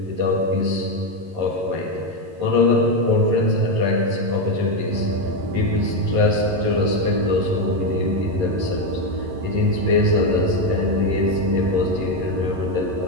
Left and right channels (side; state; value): left; late; 11 ms